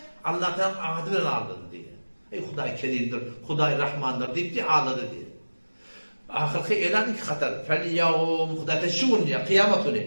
Allah'tan ahirden ağladı diye. Huday kerimdir, Huday Rahmandır deyip diye ağladı diye. Ahirki elan iki katar. Fel yevm hudate şun ya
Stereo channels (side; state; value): both; inverted; correlation -1.00